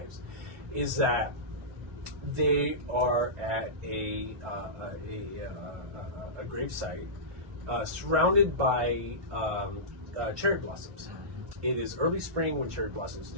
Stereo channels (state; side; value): late; left; 1.4 ms